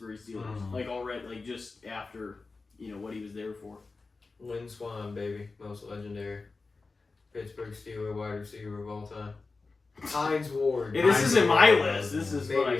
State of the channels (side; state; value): right; quieter; 3.9 dB